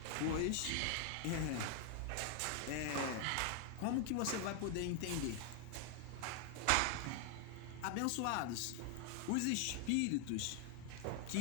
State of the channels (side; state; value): both; different; correlation 0.00